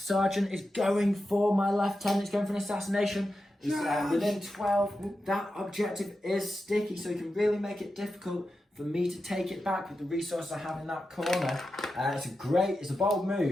is going for my lieutenant. He's going for an assassination. He's within 12. That objective is sticky, so he can really make it difficult for me to take it back with the resources I have in that corner. It's a bold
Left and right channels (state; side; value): normal; both; correlation 0.90